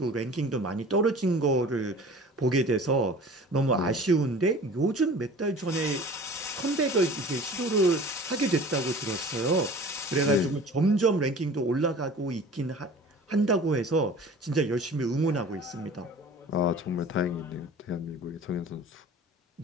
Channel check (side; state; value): both; normal; correlation 0.43